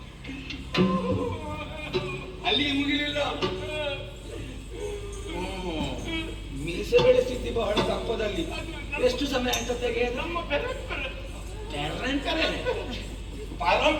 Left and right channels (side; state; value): both; identical; correlation 1.00